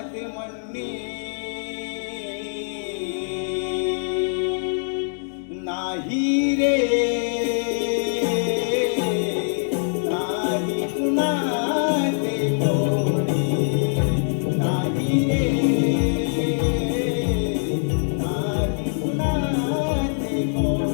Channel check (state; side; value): silent; right; digital silence